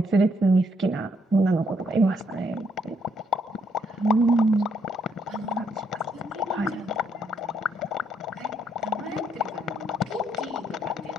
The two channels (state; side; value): normal; both; correlation 0.72